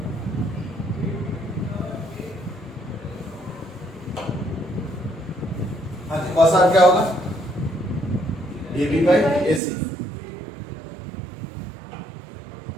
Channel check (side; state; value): left; drops out; at 9.6 s